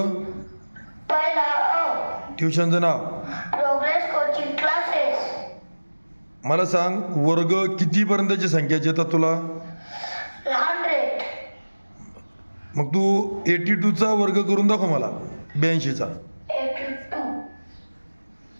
पहिला अ. ट्युशनचं नाव. Progress Coaching Classes. मला सांग वर्ग कितीपर्यंतची संख्याची येतात तुला. 100. मग तू 82चा वर्ग करून दाखव मला 82चा. 82.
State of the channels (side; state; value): both; inverted; correlation -1.00